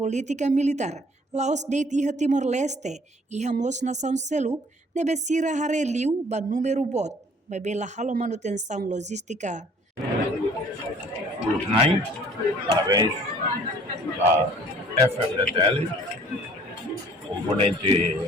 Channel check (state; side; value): normal; both; correlation 0.55